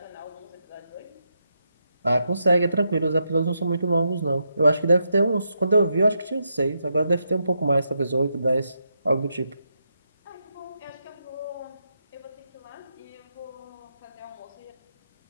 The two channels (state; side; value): inverted; both; correlation -0.82